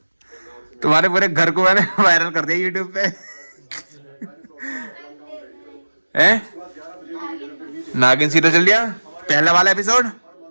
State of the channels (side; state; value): both; inverted; correlation -1.00